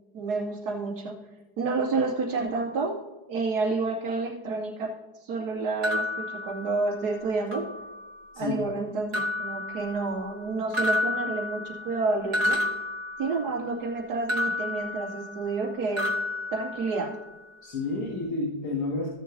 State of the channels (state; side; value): late; left; 4.8 ms